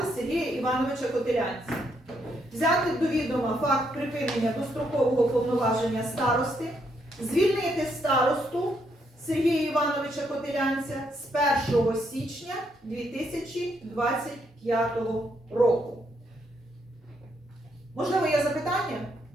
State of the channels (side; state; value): both; normal; correlation 0.75